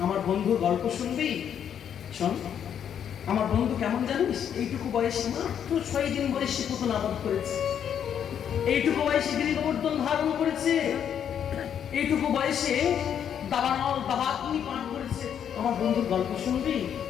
আমার বন্ধুর গল্প শুনবি, শোন আমার বন্ধু কেমন জানিস, এইটুকু বয়সে মাত্র 6 দিন বয়সে পুতুল আবাদ করেছে, এইটুকু বয়সে গিরিগোবর্ধন ধারণ করেছে, এইটুকু বয়সে দাবানল দাবাগ্নি পান করেছে। আমার বন্ধুর গল্প শুনবি?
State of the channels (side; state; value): right; quieter; 8.8 dB